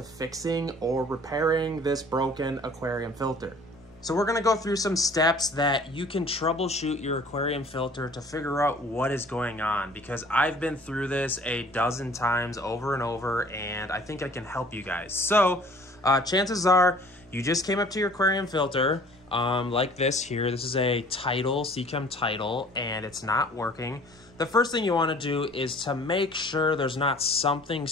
fixing or repairing this broken aquarium filter. So we're gonna go through some steps that you can troubleshoot your aquarium filter to figure out what is going on, because I've been through this a dozen times over and over and I think I can help you guys. So chances are you just came up to your aquarium filter like this here. This is a Tidal, Seachem Tidal, and it's not working. The first thing you wanna do is to make sure there's not something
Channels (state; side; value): noise; right; rumble, 28 dB below the sound